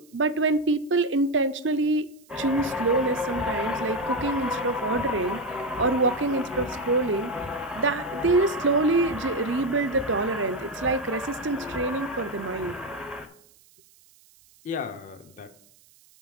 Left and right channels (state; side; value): noise; right; hiss, 29 dB below the sound